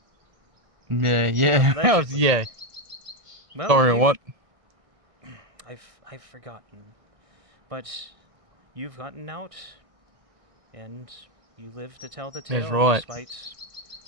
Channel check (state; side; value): late; left; 1.6 ms